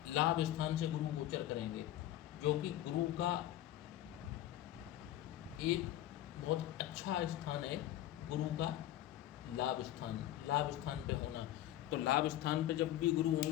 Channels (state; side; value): quieter; right; 13.3 dB